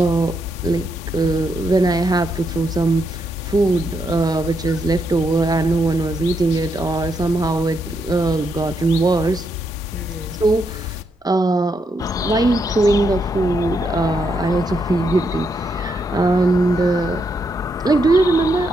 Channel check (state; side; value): normal; both; correlation 0.79